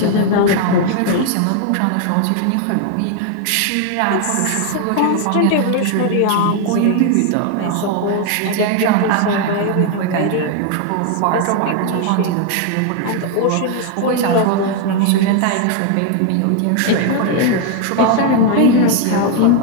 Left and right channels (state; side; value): different; both; correlation 0.01